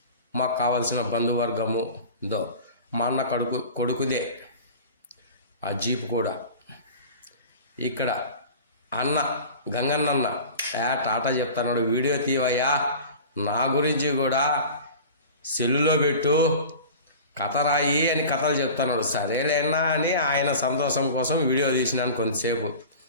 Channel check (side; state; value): both; inverted; correlation -0.38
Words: మాకు కావాల్సిన బంధువర్గము మా అన్న కొడుకుదే ఆ జీప్ కూడా. ఇక్కడ అన్న గంగన్న టాటా చెప్తున్నాడు, వీడియో తీవయ్యా, నా గురించి కూడా సెల్లులో పెట్టు, కథ రాయి అని కథలు చెప్తున్నాడు. సరేలేనా అని ఆయన సంతోషం కోసం వీడియో తీసినాను కొంతసేపు.